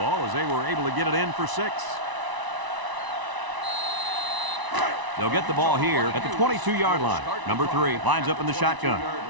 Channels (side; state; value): left; late; 1.0 ms